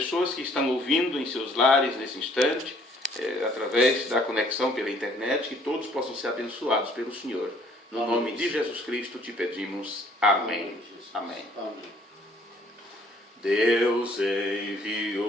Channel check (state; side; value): normal; both; correlation 0.60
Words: que estão ouvindo em seus lares nesse instante, através da conexão pela internet, que todos possam ser abençoados pelo Senhor. No nome de Jesus Cristo te pedimos. Amém. Amém. Deus